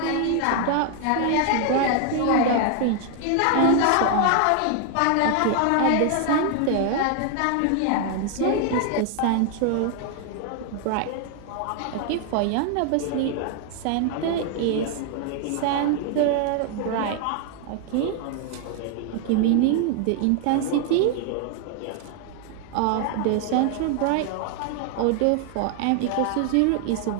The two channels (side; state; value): both; different; correlation 0.00